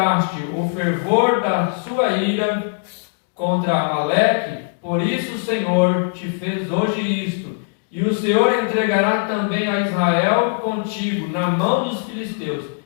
o fervor da sua ira contra Amaleque, por isso o Senhor te fez hoje isto, e o Senhor entregará também a Israel contigo na mão dos filisteus,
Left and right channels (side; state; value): right; silent; digital silence